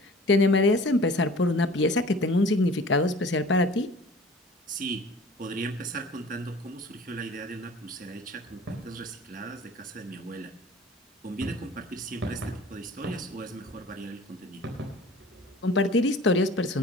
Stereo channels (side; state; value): both; normal; correlation 0.45